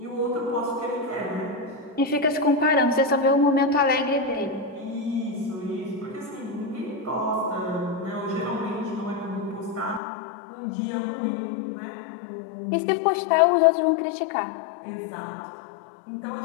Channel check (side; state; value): right; drops out; at 10.0 s